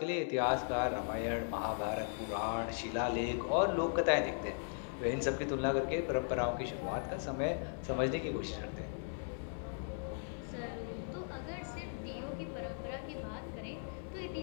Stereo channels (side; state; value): right; silent; digital silence